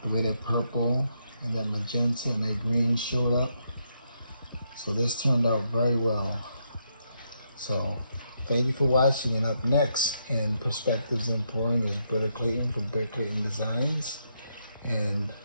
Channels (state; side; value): inverted; both; correlation -0.79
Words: The way that purple and that magenta and that green showed up. So this turned out very well. So thank you for watching, and up next in Perspectives in Pouring is Britta Clayton from Britta Clayton Designs. And